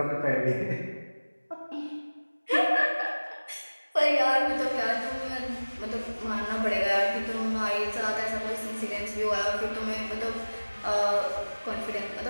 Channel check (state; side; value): inverted; both; correlation -1.00